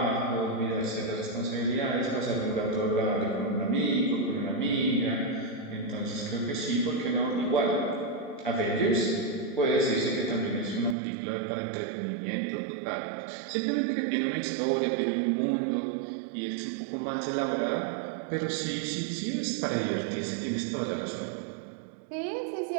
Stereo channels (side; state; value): left; drops out; at 11.0 s